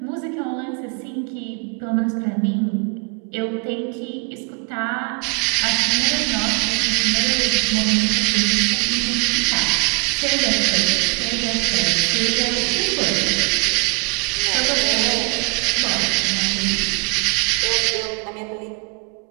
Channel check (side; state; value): left; quieter; 33.9 dB